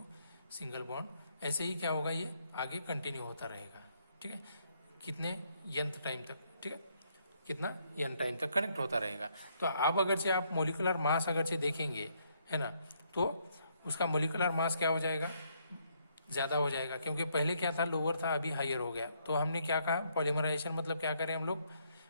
single bond, ऐसे ही क्या होगा, ये आगे कंटिन्यू होता रहेगा। ठीक है, कितने n टाइम तक, ठीक है, कितना n टाइम तक कनेक्ट होता रहेगा। तो अब अगर से आप मोलिकुलर मास अगर से देखेंगे, है ना, तो उसका मोलिकुलर मास क्या हो जाएगा, ज़्यादा हो जाएगा, क्योंकि पहले क्या था, लोअर था, अभी हायर हो गया। तो हमने क्या कहा, पॉलीमराइजेशन मतलब क्या करें हम लोग,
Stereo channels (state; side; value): inverted; both; correlation -0.72